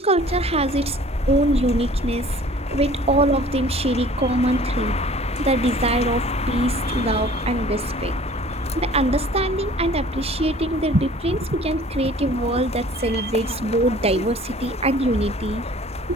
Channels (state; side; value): normal; both; correlation 0.50